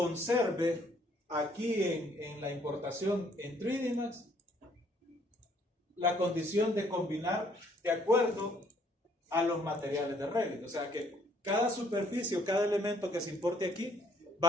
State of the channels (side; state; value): both; normal; correlation 0.65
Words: aquí en la importación en 3D Max la condición de combinar de acuerdo a los materiales de Revit. O sea que cada superficie o cada elemento que se importe aquí va